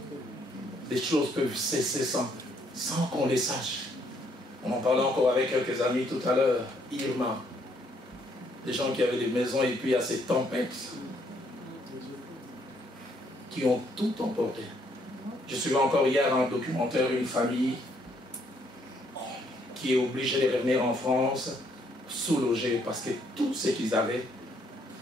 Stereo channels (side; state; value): both; normal; correlation 0.69